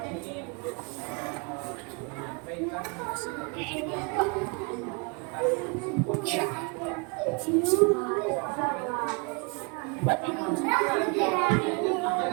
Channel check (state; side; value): quieter; left; 31.5 dB